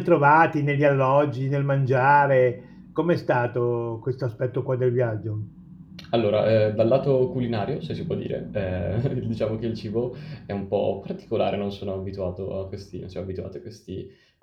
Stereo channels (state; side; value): identical; both; correlation 1.00